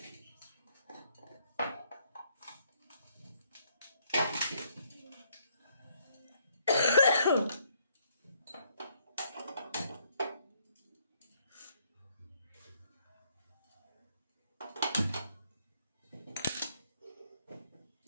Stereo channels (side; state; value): both; inverted; correlation -0.70